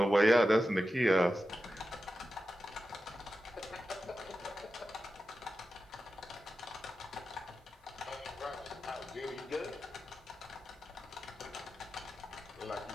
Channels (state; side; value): normal; both; correlation 0.91